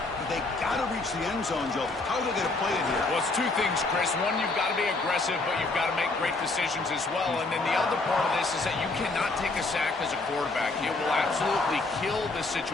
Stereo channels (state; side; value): quieter; right; 3.4 dB